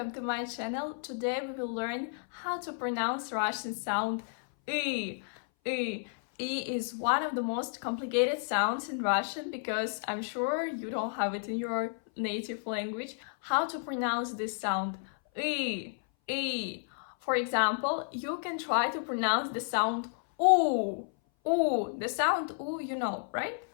to my channel. Today we will learn how to pronounce Russian sound I. I. I is one of the most complicated sounds in Russian because I'm sure you don't have it in your native language. How to pronounce this sound I. I. For example, you can try to pronounce the sound U. U. The sound U, you know, right?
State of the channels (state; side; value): silent; right; 57 dB below the other